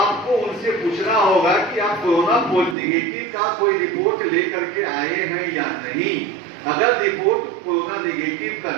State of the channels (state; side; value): drops out; left; at 2.8 s